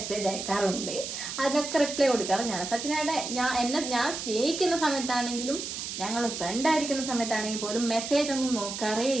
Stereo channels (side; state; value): right; noise; hiss, 6 dB below the sound